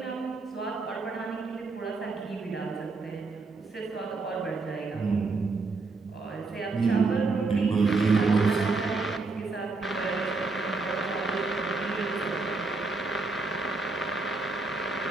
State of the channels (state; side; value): quieter; left; 3.8 dB